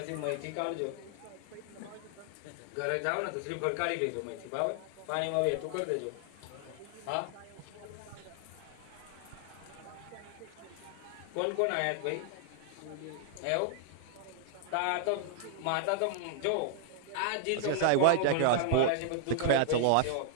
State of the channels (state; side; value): different; both; correlation 0.00